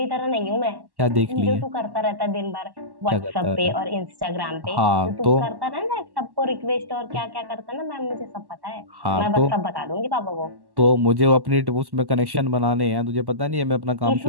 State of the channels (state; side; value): late; left; 1.1 ms